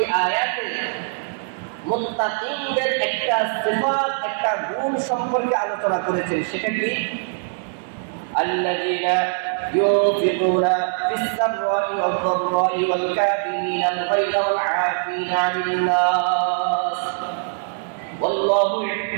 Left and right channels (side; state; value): left; silent; 60 dB below the other